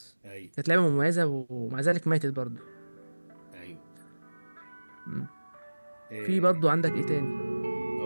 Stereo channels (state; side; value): inverted; both; correlation -1.00